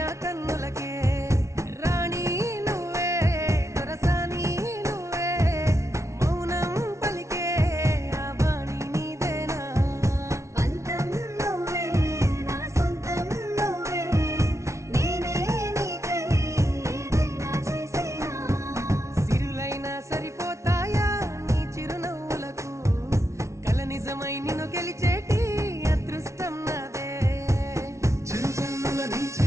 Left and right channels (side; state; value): left; late; 0.14 ms